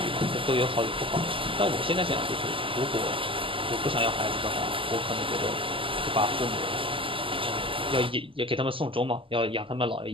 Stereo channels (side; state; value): left; late; 0.25 ms